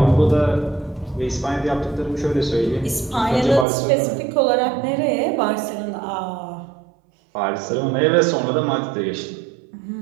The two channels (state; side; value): drops out; left; at 3.7 s